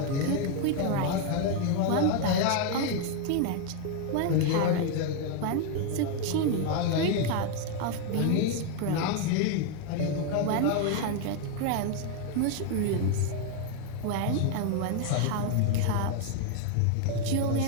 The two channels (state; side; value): different; both; correlation 0.01